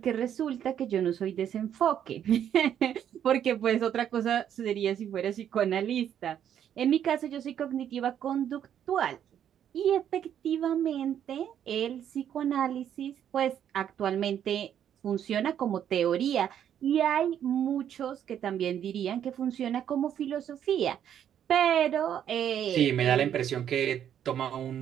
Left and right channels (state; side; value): quieter; left; 9.7 dB